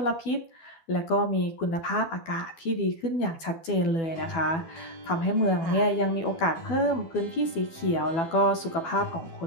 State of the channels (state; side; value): late; right; 12 ms